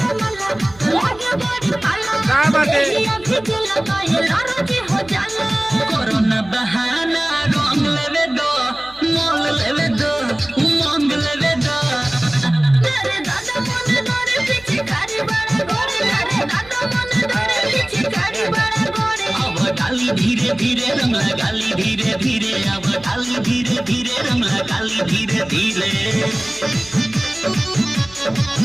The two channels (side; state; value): right; noise; hum, 23 dB below the sound